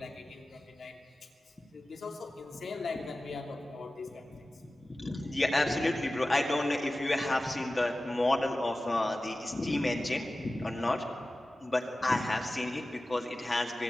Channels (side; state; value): both; normal; correlation 0.96